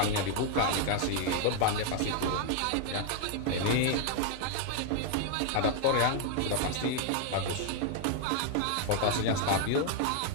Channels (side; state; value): both; different; correlation 0.00